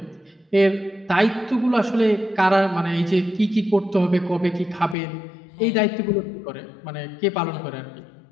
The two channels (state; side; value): drops out; right; at 5.0 s